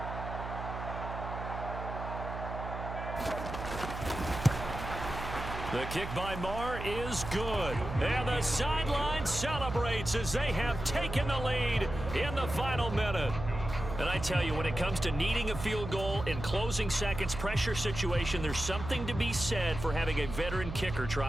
The kick by Maher is good. And the sideline celebrates as they have taken the lead in the final minute. And I tell you, when it comes to needing a field goal in closing seconds, pressure situation, there's something to be said for having a veteran kicker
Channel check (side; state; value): right; noise; hum, 7 dB below the sound